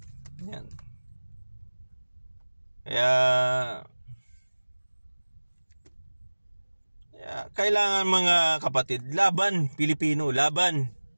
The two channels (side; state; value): both; inverted; correlation -1.00